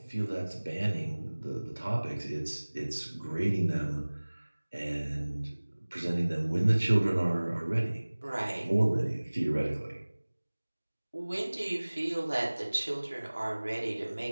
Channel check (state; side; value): inverted; both; correlation -1.00